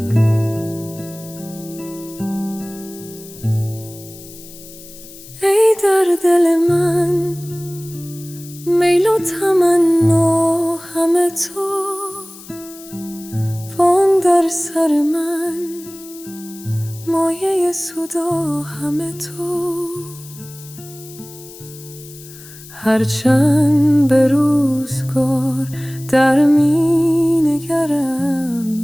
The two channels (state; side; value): noise; left; hiss, 18 dB below the sound